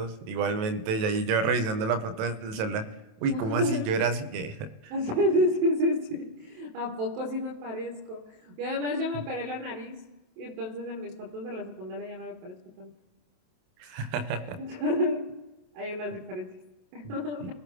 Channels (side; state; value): left; late; 27 ms